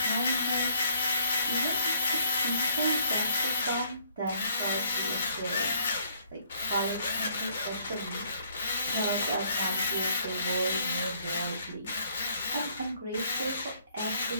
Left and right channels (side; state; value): both; inverted; correlation -0.65